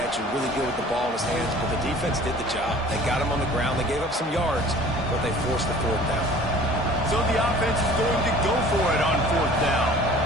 and really good with the ball in his hands, but the defense did the job. They got him on the ground. They gave up some yards, but they forced the fourth down. So the offense is going to go for it on fourth down.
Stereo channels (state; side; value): normal; both; correlation 0.48